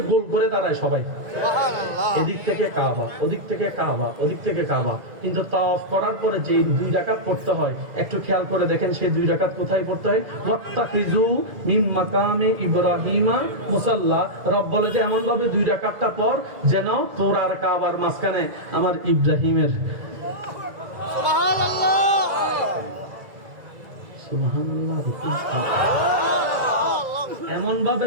গোল করে দাঁড়ায় সবাই, এদিক থেকে কাবা, ওদিক থেকে কাবা, ওদিক থেকে কাবা। কিন্তু তাওয়াফ করার পরে যে 2 রাকাত পড়তে হয়, একটু খেয়াল করে দেখেন সেই 2 রাকাত কোথায় পড়তে হয়? ওয়াত্তাখিযু মিন মাকামে ইব্রাহিমা মুসাল্লা। রব বলে যে এমন ভাবে 2 রাকাতটা পর যেন তোর আর কাবার মাঝখানে আমার ইব্রাহিমের, সুবহানাল্লাহ, সুবহানাল্লাহ, এমন ভাবে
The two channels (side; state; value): left; late; 2.0 ms